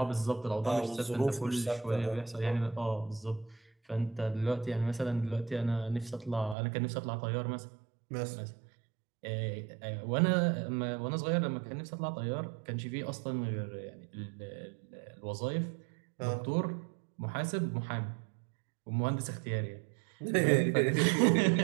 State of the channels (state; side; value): drops out; left; at 6.6 s